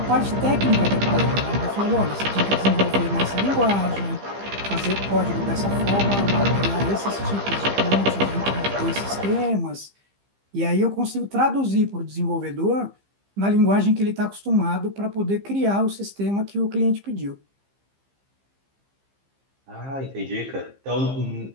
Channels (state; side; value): late; left; 15 ms